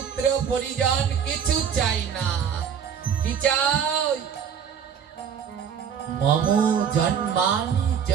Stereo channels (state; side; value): quieter; left; 7.7 dB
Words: পরিজন কিছু চাই না। কি চাও? মম জন্মানি